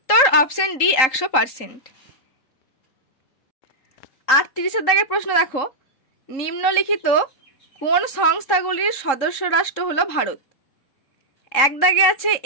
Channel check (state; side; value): late; right; 3.8 ms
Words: অপশন ডি 100%। 38 দাগের প্রশ্ন দেখো, নিম্নলিখিত কোন সংস্থাগুলির সদস্য রাষ্ট্র হলো ভারত? এক দাগে আছে